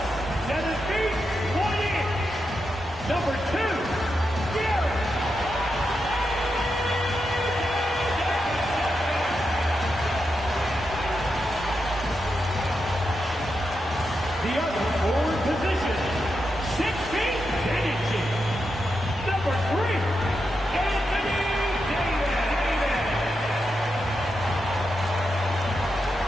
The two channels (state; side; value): normal; both; correlation 0.86